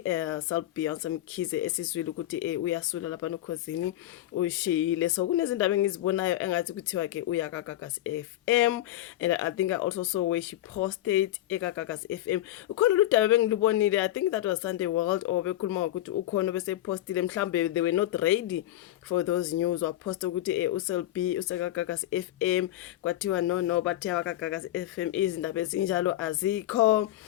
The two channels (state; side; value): quieter; right; 14.0 dB